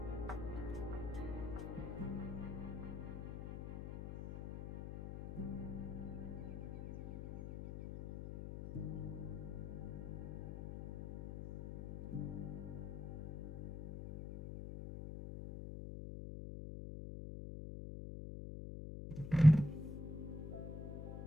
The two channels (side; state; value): left; noise; hum, 7 dB below the sound